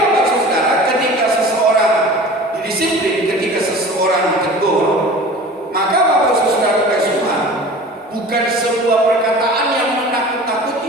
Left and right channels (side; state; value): both; normal; correlation 0.40